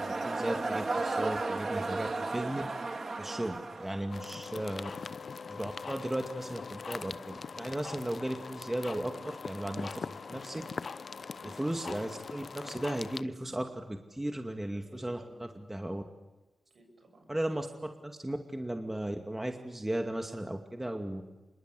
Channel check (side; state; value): both; normal; correlation 0.96